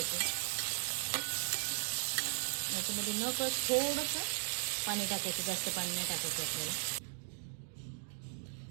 याच्यामध्ये न कळत थोडंसं पाणी टाकायचं, जास्त पाणी नाही टाकायचं आपल्याला।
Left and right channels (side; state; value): left; silent; digital silence